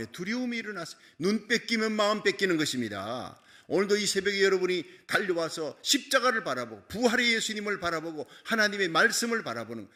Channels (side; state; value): both; identical; correlation 1.00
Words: 두려움이 일어났어요. 눈 뺏기면 마음 뺏기는 것입니다. 오늘도 이 새벽에 여러분이 달려와서 십자가를 바라보고 부활의 예수님을 바라보고 하나님의 말씀을 바라보는,